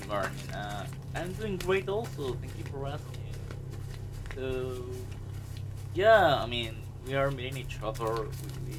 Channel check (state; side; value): identical; both; correlation 1.00